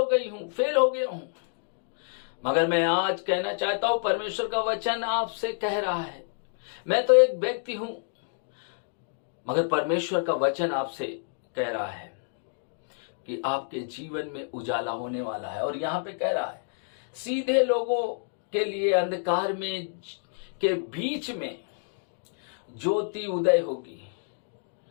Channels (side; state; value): right; silent; digital silence